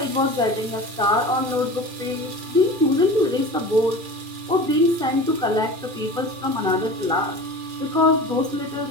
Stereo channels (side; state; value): left; late; 2.4 ms